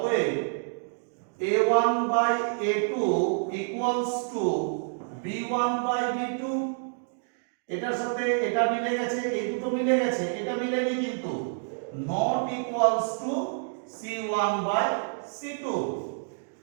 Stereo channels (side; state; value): left; silent; digital silence